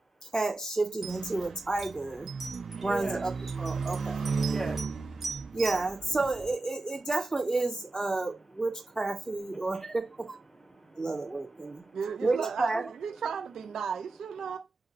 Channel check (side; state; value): left; quieter; 3.1 dB